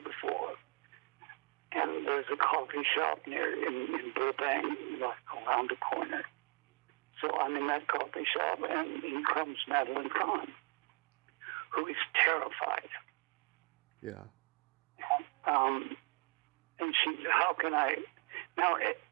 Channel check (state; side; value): quieter; left; 30.8 dB